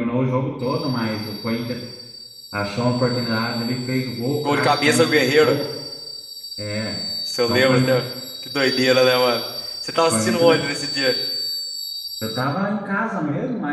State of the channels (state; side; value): identical; both; correlation 1.00